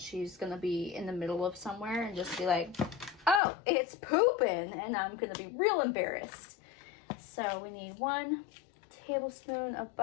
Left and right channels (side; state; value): right; drops out; at 3.4 s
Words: gonna be in the middle of somewhere and just be like, oh, it's pooping, and I'm gonna be real embarrassed. So we need 1 tablespoon of